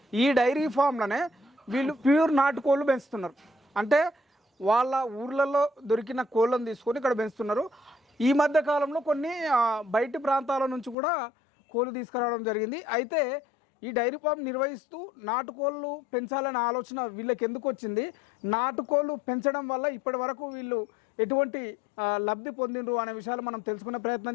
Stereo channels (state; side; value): drops out; right; at 11.0 s